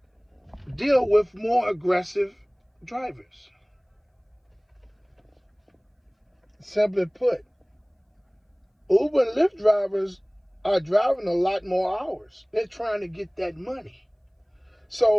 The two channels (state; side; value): identical; both; correlation 1.00